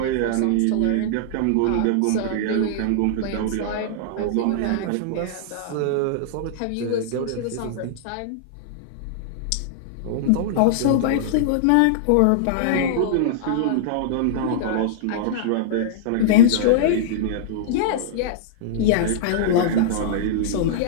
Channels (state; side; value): different; both; correlation -0.02